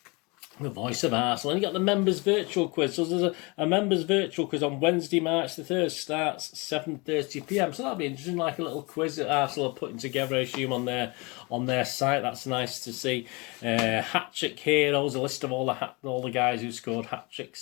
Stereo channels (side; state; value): right; quieter; 27.6 dB